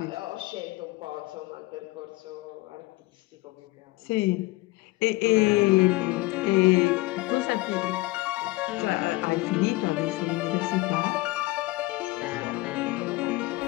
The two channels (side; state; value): right; quieter; 20.7 dB